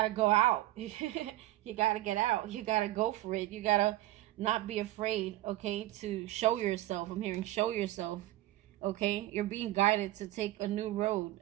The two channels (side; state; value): left; quieter; 16.3 dB